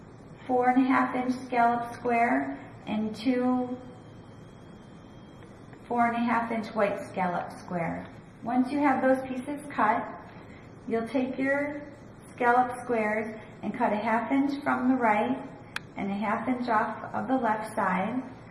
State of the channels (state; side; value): identical; both; correlation 1.00